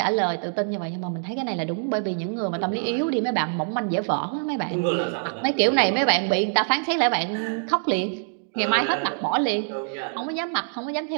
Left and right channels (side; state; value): left; silent; digital silence